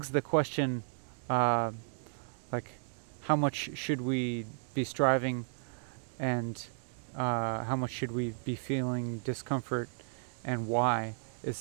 the question, like, how much should we be striving, and how much should we be feeling discomfort, and why?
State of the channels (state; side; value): silent; left; digital silence